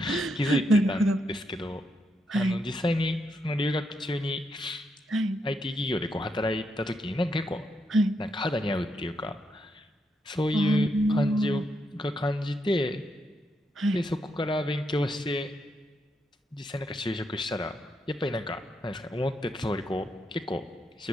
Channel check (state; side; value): normal; both; correlation 0.80